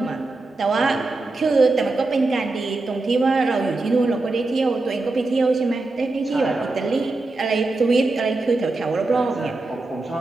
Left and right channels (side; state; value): left; quieter; 3.3 dB